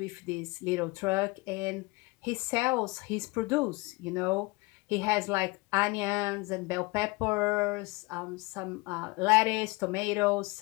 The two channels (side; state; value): right; quieter; 24.7 dB